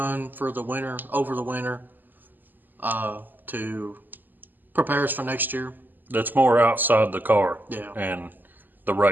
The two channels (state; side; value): late; left; 0.088 ms